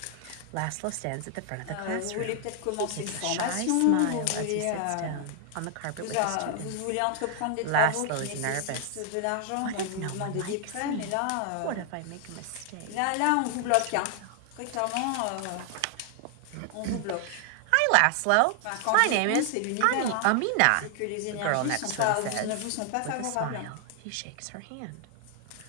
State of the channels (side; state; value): both; different; correlation 0.00